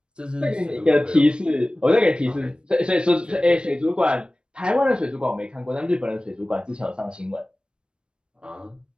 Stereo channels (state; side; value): late; left; 0.053 ms